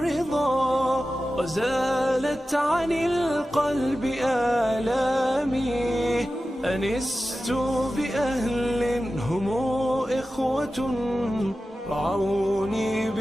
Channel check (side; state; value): both; normal; correlation 0.94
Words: وزالت عن القلب آلامي أنست بأهل هم إخوة رعوني